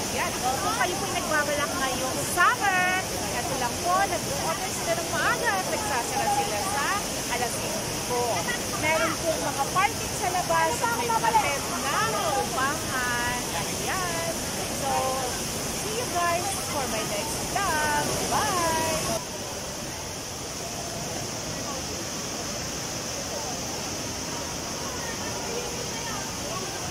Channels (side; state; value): both; identical; correlation 1.00